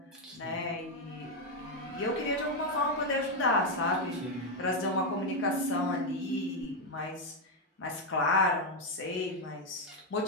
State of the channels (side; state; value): both; normal; correlation 0.03